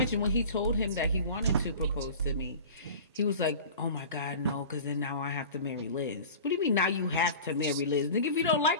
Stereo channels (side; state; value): both; inverted; correlation -0.38